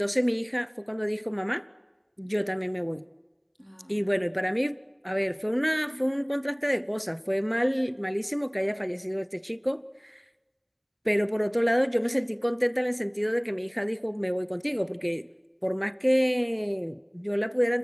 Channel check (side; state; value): both; identical; correlation 1.00